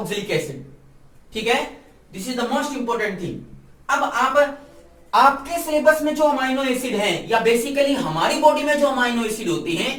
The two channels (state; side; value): identical; both; correlation 1.00